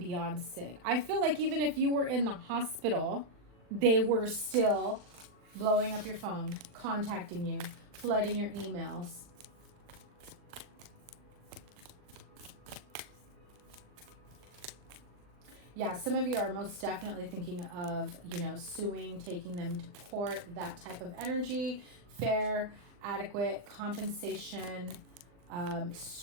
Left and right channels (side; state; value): left; late; 39 ms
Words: sick. I feel like even if you were in the hospital, they were still blowing up your phone, contacting you, flooding your emails. Yeah, some of you are most definitely thinking of, you know, suing, taking them to court, that type of energy. Fair, adequate, compensation,